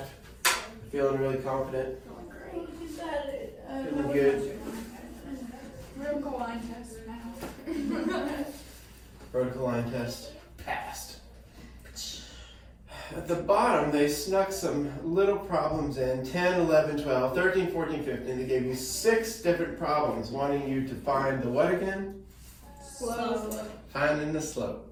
Feeling really confident? Feeling good? Vertical line test now. Vertical line test passed. At the bottom, they snuck some little problems in 10, 11, 12, 13, 14, 15. They gave you 6 different problems wanting you to find the what again? Slope. Finding the slope.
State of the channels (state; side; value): identical; both; correlation 1.00